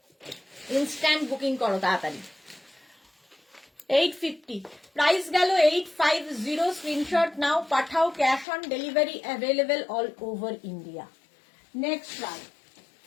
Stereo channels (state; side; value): drops out; right; at 8.5 s